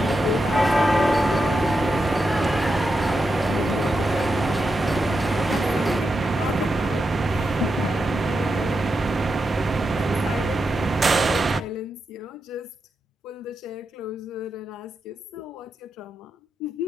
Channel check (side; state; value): both; normal; correlation 0.87